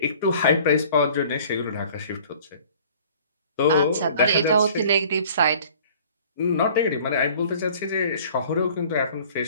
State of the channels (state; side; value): inverted; both; correlation -0.51